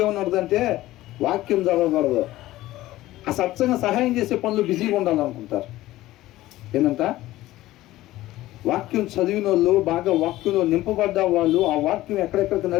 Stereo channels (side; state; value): right; quieter; 16.3 dB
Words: ఏమన్నదంటే వాక్యం చదవకూడదు, ఆ సత్సంగా సహాయం చేసే పనులు బిజీగా ఉండాలనుకుంటారు. ఏంటంట? వాక్యం చదివిన వాళ్ళు, బాగా వాక్యంలో నింపబడ్డ వాళ్ళు, ఆ వాక్యం ఎక్కడెక్కడికి